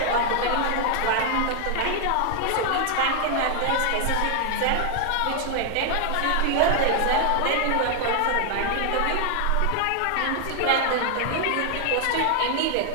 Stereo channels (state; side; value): different; both; correlation 0.00